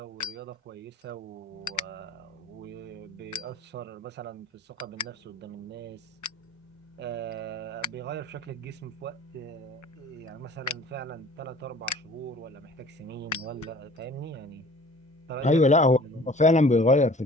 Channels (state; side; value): normal; both; correlation 0.48